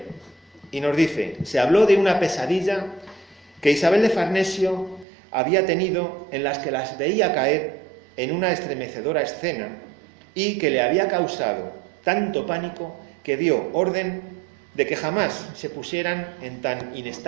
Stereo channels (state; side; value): drops out; left; at 5.1 s